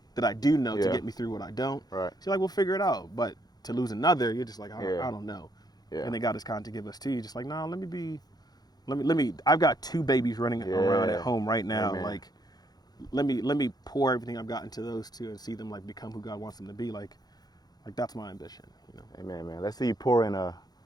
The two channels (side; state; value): right; late; 0.19 ms